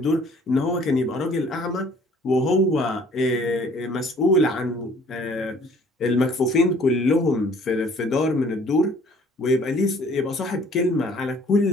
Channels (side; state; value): both; normal; correlation 0.56